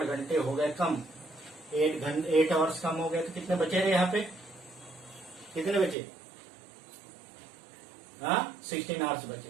घंटे हो गए कम, 8 आवर्स कम हो गए, तो कितने बचे रहे यहाँ पे? कितने बचे? हाँ 16 आवर्स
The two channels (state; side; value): drops out; left; at 6.0 s